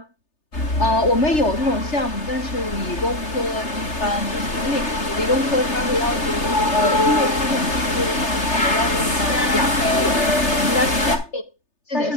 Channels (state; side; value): late; right; 3.3 ms